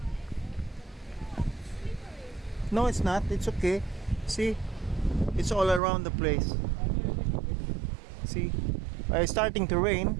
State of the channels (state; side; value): drops out; left; at 5.8 s